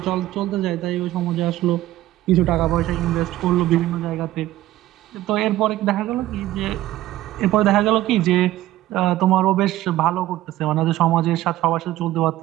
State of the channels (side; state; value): left; quieter; 15.1 dB